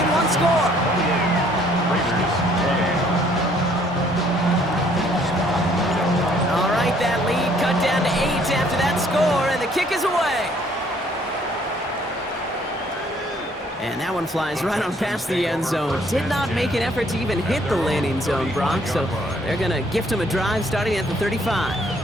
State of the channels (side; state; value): both; normal; correlation 0.63